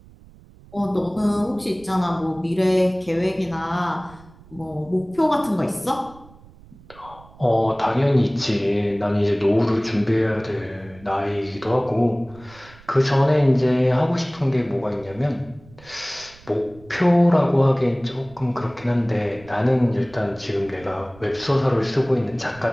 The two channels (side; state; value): right; noise; rumble, 23 dB below the sound